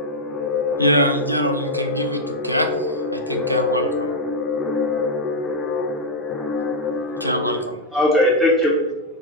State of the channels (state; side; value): normal; both; correlation -0.01